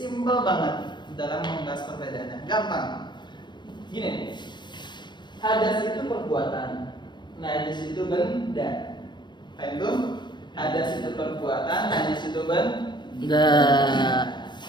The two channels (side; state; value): right; late; 0.22 ms